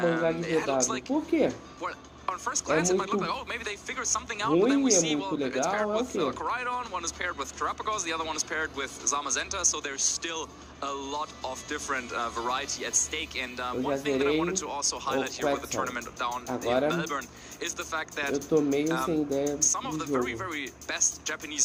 looks like, well, on first glance, it might look like, oh, maybe they figured something out, but then we see, well, it's paired with Coridon, one is paired with Terrapagos, the other one is paired with Zamazenta, so there's still a lot of different variety at stake. And one thing that I wanted to also highlight here with the tournament down in Melbourne is the fact that some of the very, very best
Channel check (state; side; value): identical; both; correlation 1.00